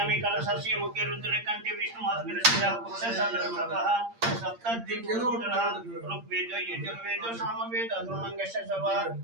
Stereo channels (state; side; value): late; left; 8.7 ms